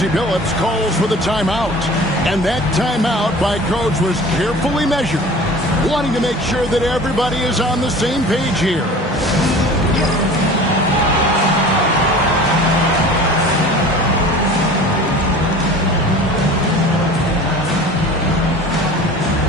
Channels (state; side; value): normal; both; correlation 0.41